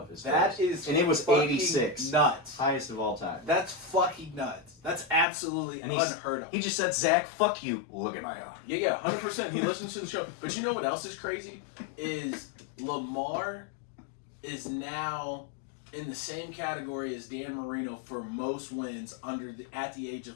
his That throws. is And it was fucking 86. nuts. Highest of all time. That's fucking nuts. That's absolutely And he's- unheard of. He just said, Zach, fuck you. Look at my arm. Yeah, 100%. He listens to the show. But you know what else is crazy? Is Lamar is now in the same category as Dan Marino for most wins at the age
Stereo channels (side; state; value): right; drops out; at 5.2 s